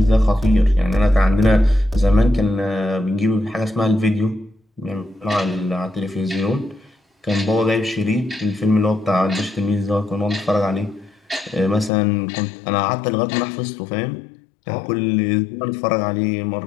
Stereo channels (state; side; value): drops out; right; at 11.9 s